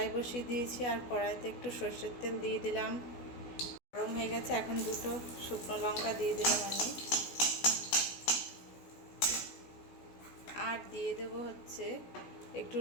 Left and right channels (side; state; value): right; late; 16 ms